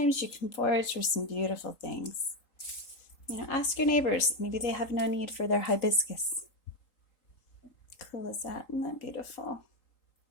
you can forage for some beautiful things. You know, ask your neighbors. Maybe they have no need for their hibiscus. Cool is that? Isn't that beautiful?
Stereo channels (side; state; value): right; late; 3.8 ms